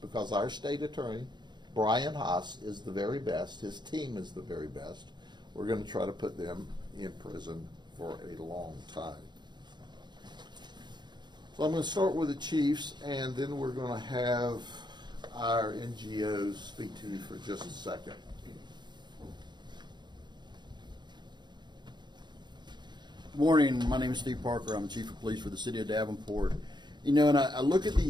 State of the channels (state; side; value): late; left; 0.21 ms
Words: because our state attorney, Brian Haas, is the very best. His team is the very best. We're going to try to put them in prison for a long time. So I'm going to start with the chiefs, and then we're going to have our NGOs speak to you for just a second. Good morning. My name is Steve Parker. I'm the Chief of Police for the City of Davenport. You know, and I look at